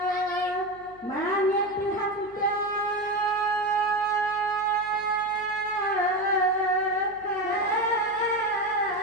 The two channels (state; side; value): noise; left; hum, 26 dB below the sound